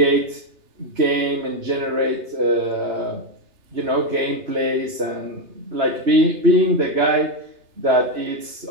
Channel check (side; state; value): left; late; 2.9 ms